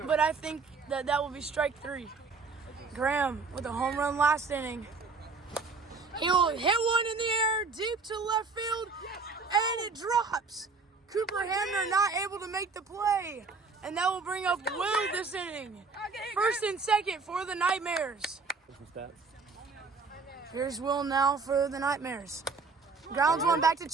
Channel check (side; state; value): left; quieter; 4.4 dB